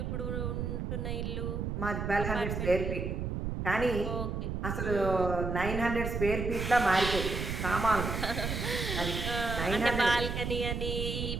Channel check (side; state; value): right; noise; rumble, 3 dB below the sound